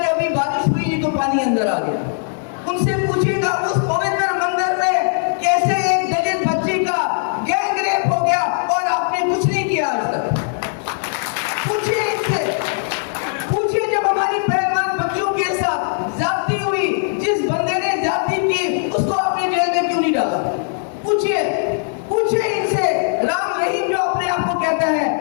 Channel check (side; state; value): right; silent; digital silence